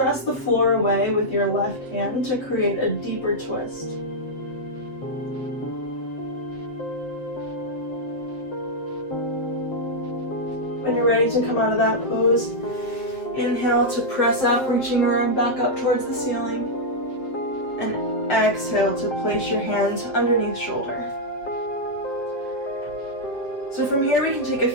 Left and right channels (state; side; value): late; right; 7.5 ms